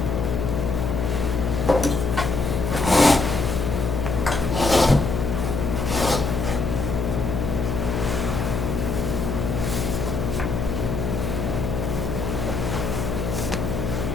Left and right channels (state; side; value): noise; left; hum, 2 dB below the sound